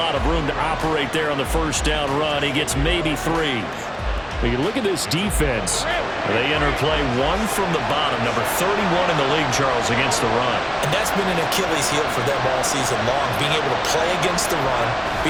of room to operate there on the first down run. He gets maybe 3. But you look at this defense. They enter play 1 from the bottom, number 31 in the league, Charles, against the run. And that's been an Achilles heel for them all season long, being able to play against the run,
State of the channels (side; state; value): both; identical; correlation 1.00